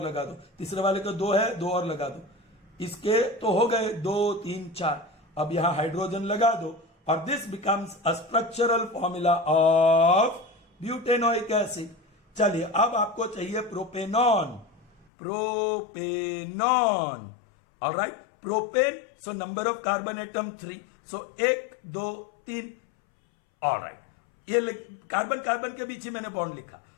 लगा दो, तीसरे वाले को 2 है 2 और लगा दो, इसके तो हो गए 2 3 4। अब यहां हाइड्रोजन लगा दो और this becomes a structural formula of butanoic acid. चलिए अब आपको चाहिए propanone, propanone. Alright, propane, so number of carbon atom 3, so 1 2 3। Alright, ये कार्बन कार्बन के बीच ही मैंने बॉन्ड लिखा।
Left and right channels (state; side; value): drops out; right; at 15.1 s